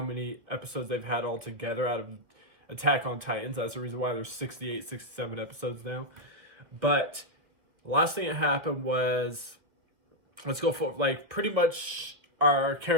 many episodes they've had all together out of Attack on Titans. That's the reason why there's 68, 67 episodes now. But the last thing that happened was, let's go for, pretty much our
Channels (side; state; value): left; late; 1.9 ms